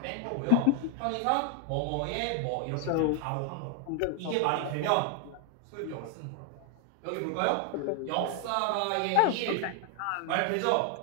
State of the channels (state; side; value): different; both; correlation 0.00